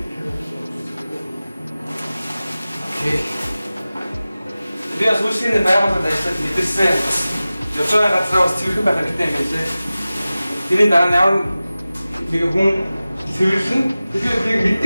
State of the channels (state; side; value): inverted; both; correlation -0.97